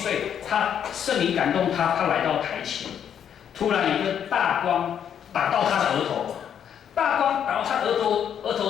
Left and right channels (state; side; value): quieter; right; 8.8 dB